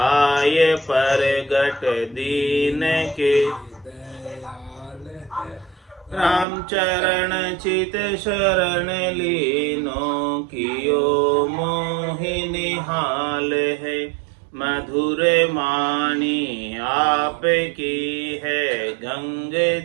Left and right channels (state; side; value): drops out; left; at 6.5 s